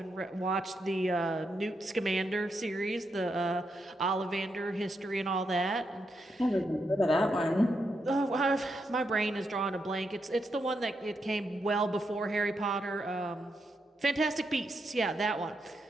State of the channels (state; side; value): normal; both; correlation 0.83